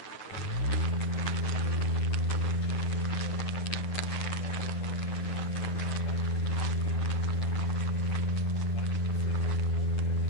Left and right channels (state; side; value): late; right; 9.3 ms